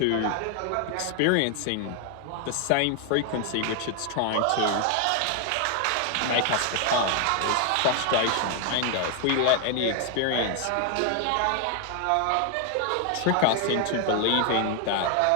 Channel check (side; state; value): both; different; correlation 0.00